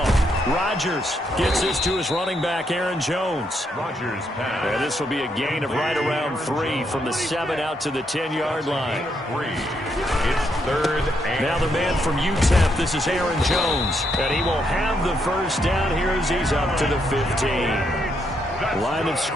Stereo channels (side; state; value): both; normal; correlation 0.77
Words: Rodgers gets this to his running back, Aaron Jones. Rodgers pass. And this will be a gain of right around 3 from the 7 out to the 10-yard line. It's third and now the man from UTEP, this is Aaron Jones. And he will have the first down here as he's up to the 15. Line of